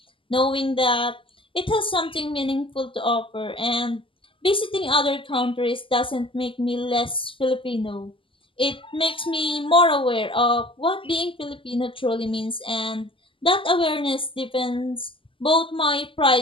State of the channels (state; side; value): late; right; 0.25 ms